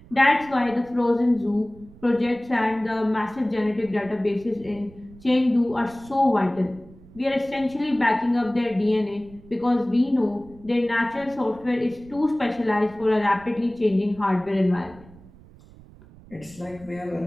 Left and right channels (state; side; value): noise; right; rumble, 22 dB below the sound